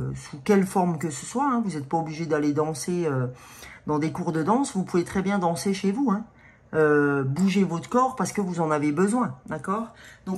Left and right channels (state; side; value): identical; both; correlation 1.00